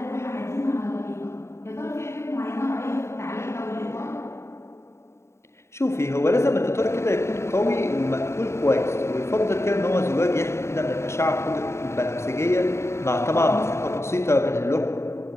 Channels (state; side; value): late; right; 0.13 ms